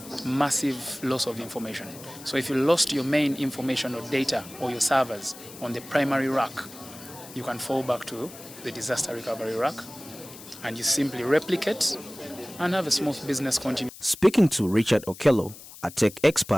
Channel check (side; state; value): left; noise; hiss, 17 dB below the sound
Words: massive loss of information. So if you lost your main information or data or your servers on the primary rack, you can fall back to the disaster recovery rack and you simply replicate and have a smooth business continuity. Speaking to Richard Okello, a tech